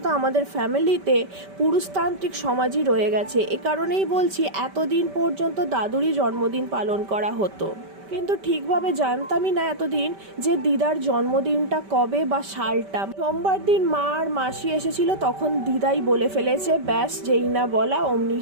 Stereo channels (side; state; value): left; late; 5.2 ms